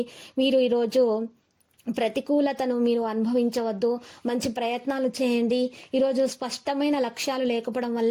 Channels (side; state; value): both; identical; correlation 1.00